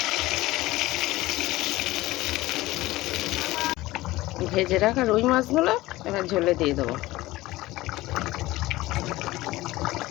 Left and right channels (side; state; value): right; quieter; 18.3 dB